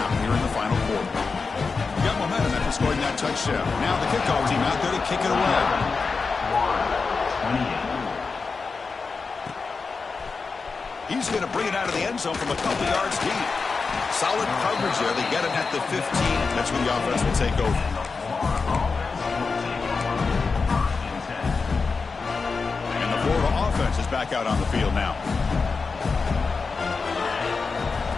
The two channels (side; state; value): right; quieter; 4.6 dB